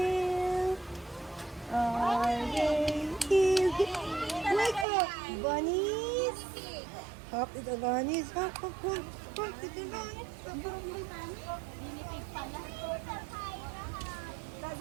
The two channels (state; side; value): drops out; left; at 4.9 s